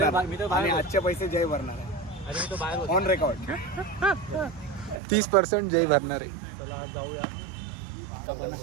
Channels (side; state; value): left; drops out; at 5.0 s